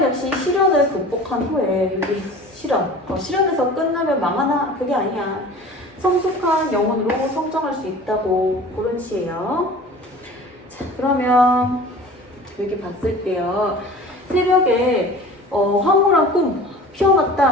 역시 시련을 극복한 후에 여기 시련에서 끝나면 망하나 그게 아니야. 성숙한 영혼으로 성장할 수 있다고 그런 시예요. 자, 그러면 여기 봤을 때요. 새벽에 황홀한 꿈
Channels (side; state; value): both; normal; correlation 0.41